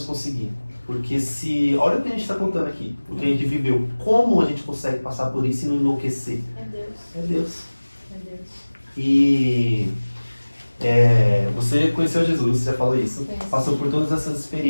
conseguir? Porque olha o que a gente está contando aqui, o que a gente viveu, como a gente consegue passar por isso e não enlouquecer? É Deus. É Deus. É Deus. E você conheceu Jesus, você já falou isso, passou por todas essas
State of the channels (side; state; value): both; inverted; correlation -1.00